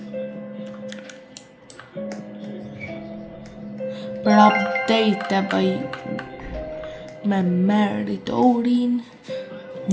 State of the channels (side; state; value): both; identical; correlation 1.00